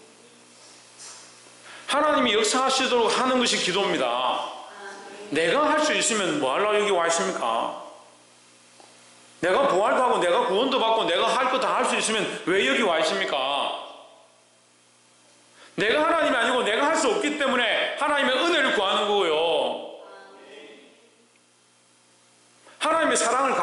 하나님이 역사하시도록 하는 것이 기도입니다. 내가 할 수 있으면 뭐 하려고 여기 와 있습니까? 내가 부활도 하고 내가 구원도 받고 내가 할 거 다 할 수 있으면 왜 여기 와 있습니까? 내가 하나님이 아니고 내가 할 수 없기 때문에 하나님의 은혜를 구하는 거고요. 하나님의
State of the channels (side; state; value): both; identical; correlation 1.00